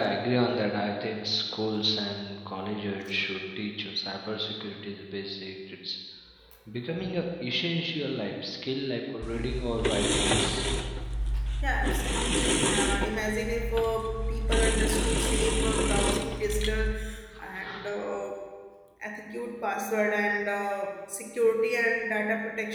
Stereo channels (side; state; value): both; identical; correlation 1.00